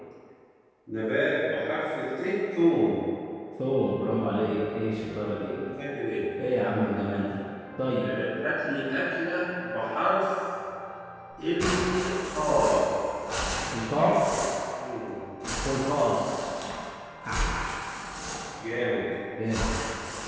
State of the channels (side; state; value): both; identical; correlation 1.00